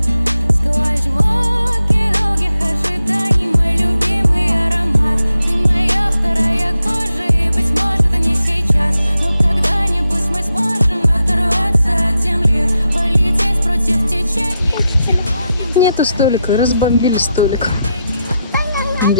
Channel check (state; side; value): inverted; both; correlation -0.85